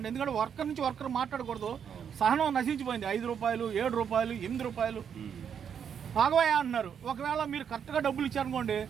ఎందుకంటే వర్కర్ నుంచి వర్కర్ మాట్లాడకూడదు, సహనం నశించిపోయింది. 5 రూపాయలు 7 రూపాయలు 8 రూపాయలు ఆగవయ్యా అంటున్నారు. ఒకవేళ మీరు కరెక్ట్గా డబ్బులు ఇచ్చారనుకోండి,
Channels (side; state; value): left; quieter; 7.8 dB